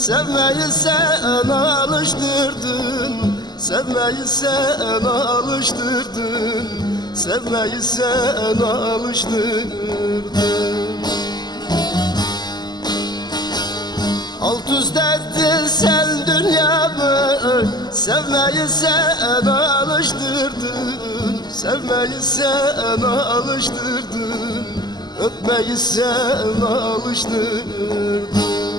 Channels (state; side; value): late; right; 0.20 ms